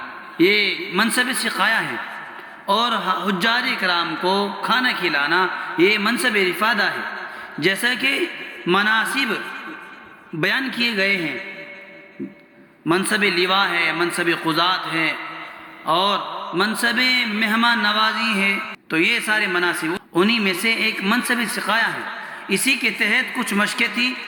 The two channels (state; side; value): identical; both; correlation 1.00